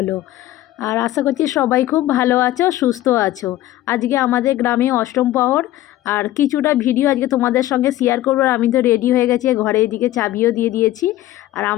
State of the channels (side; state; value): right; quieter; 14.9 dB